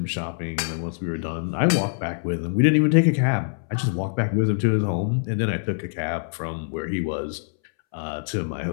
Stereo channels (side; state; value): right; silent; 62 dB below the other